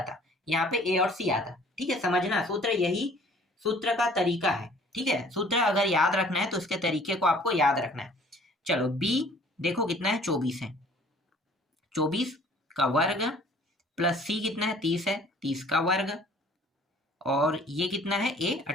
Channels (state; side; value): normal; both; correlation 0.54